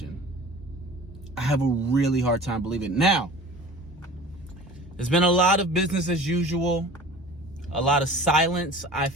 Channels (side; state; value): both; normal; correlation 0.41